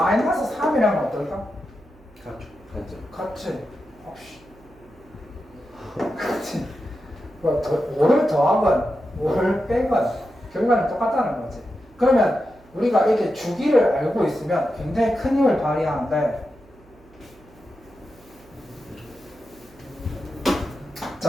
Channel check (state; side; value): noise; right; hum, 27 dB below the sound